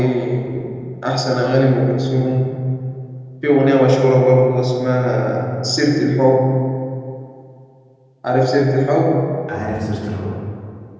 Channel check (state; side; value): identical; both; correlation 1.00